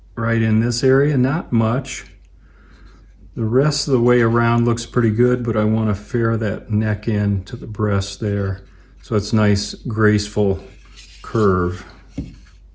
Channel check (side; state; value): both; identical; correlation 1.00